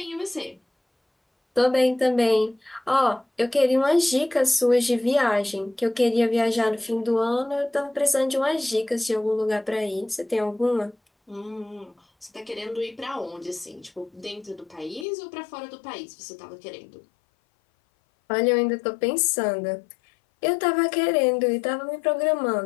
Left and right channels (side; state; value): right; drops out; at 15.1 s